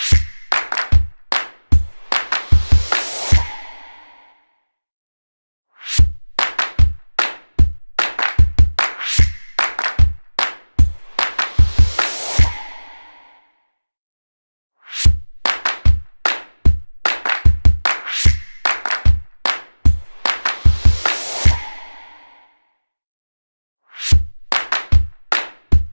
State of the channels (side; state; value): both; inverted; correlation -1.00